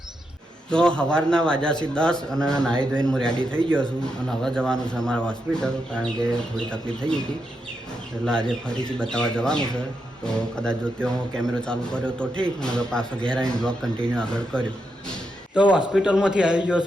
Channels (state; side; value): normal; both; correlation 0.84